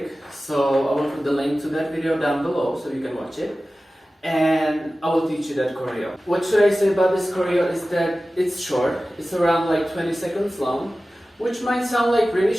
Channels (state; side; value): normal; both; correlation 0.96